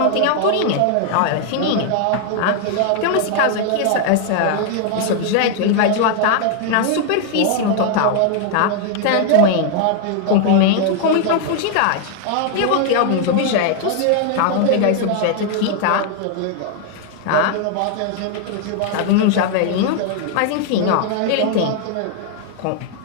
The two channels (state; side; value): different; both; correlation 0.00